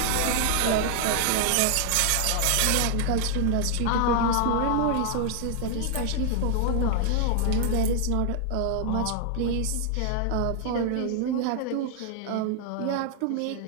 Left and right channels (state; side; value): different; both; correlation 0.00